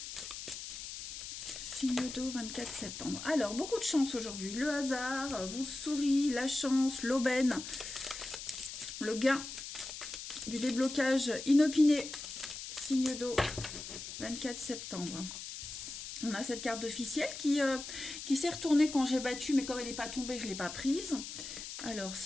Signe d'eau, 24 septembre. Alors, beaucoup de chance aujourd'hui. Le hasard vous sourit, la chance, l'aubaine, le gain du déblocage inopiné. Signe d'eau, 24 septembre. On a cette carte officielle qui s'est retournée quand j'ai battu, mais comme elle n'est pas tombée, je ne l'ai pas prise. Alors,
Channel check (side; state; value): left; noise; hiss, 9 dB below the sound